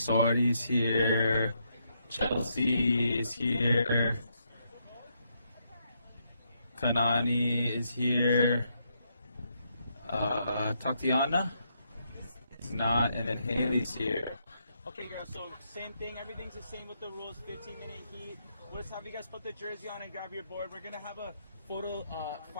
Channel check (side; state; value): both; inverted; correlation -0.78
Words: here. Chelsea is here. Kanani is here. Tatiana is not, and then Haley's here. Okay, girls, so same thing. Everything's the same with the rules. 15-minute heat. We'll just have you guys put the jersey on and grab your board. We're going to have a photo,